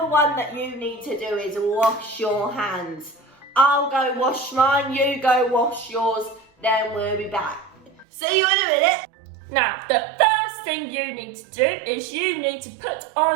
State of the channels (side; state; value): left; drops out; at 8.1 s